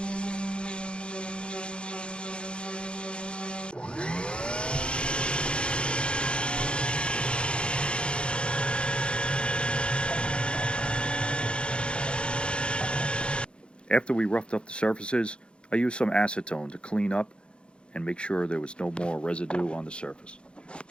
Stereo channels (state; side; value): late; right; 0.055 ms